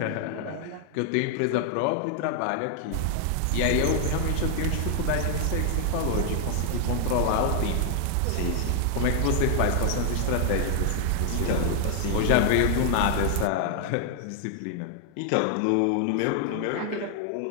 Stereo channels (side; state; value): both; different; correlation 0.00